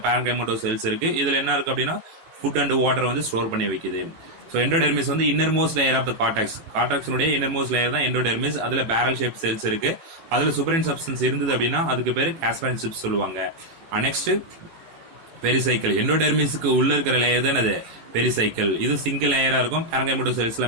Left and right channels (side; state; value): left; late; 18 ms